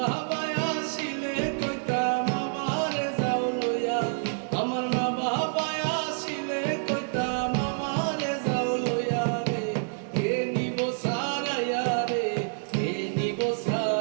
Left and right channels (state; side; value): silent; left; digital silence